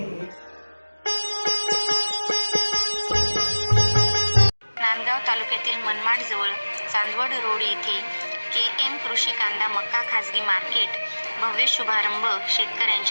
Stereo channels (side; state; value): both; inverted; correlation -1.00